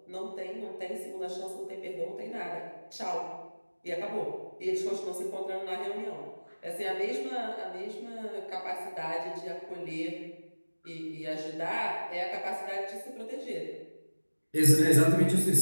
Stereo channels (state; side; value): inverted; both; correlation -1.00